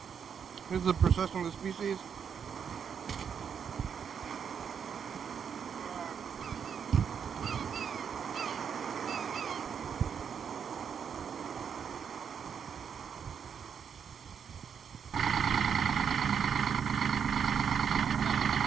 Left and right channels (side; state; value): left; quieter; 7.3 dB